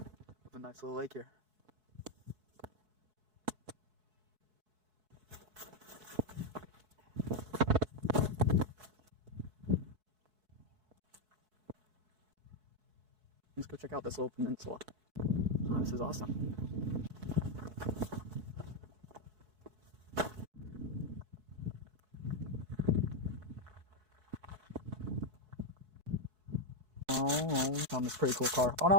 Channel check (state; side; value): late; left; 4.7 ms